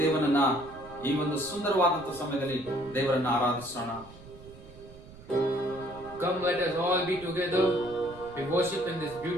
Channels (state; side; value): noise; right; rumble, 19 dB below the sound